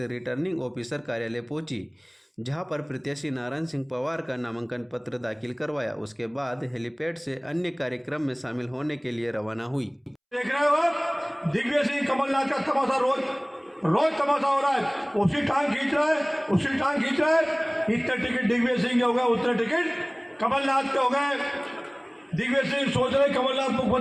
रिटर्निंग ऑफिसर कार्यालय पहुंची, जहां पर प्रत्याशी नारायण सिंह पवार का नामांकन पत्र दाखिल करवाया। उसके बाद हेलीपैड से अन्य कार्यक्रम में शामिल होने के लिए रवाना हुई। देख रहे हो आप, दिग्विजय सिंह कमलनाथ का तमाशा रोज तमाशा हो रहा है। उसी टांग खींच रहा है। इतने टिकट दिग्विजय सिंह के हो गए, उतने टिकट कमलनाथ के हो गए। दिग्विजय सिंह सोच रहे कमलनाथ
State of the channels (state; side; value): identical; both; correlation 1.00